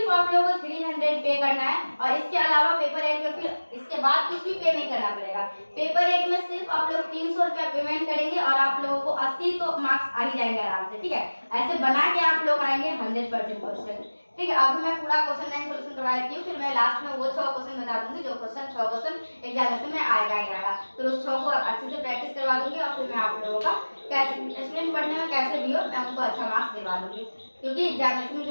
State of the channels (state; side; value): inverted; both; correlation -1.00